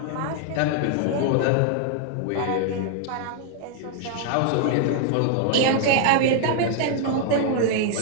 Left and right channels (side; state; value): both; different; correlation 0.00